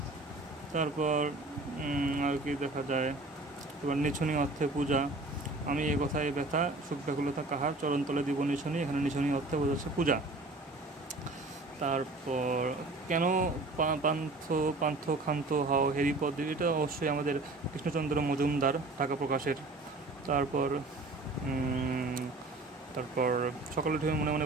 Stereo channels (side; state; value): left; quieter; 3.0 dB